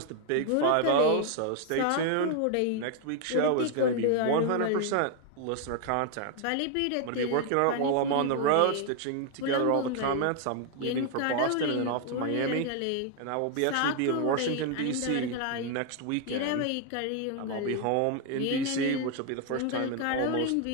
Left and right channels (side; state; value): both; different; correlation 0.00